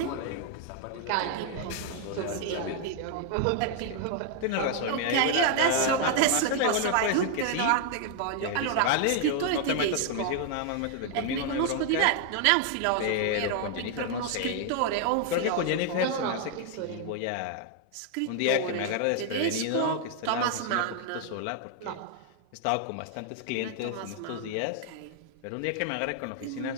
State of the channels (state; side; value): different; both; correlation 0.00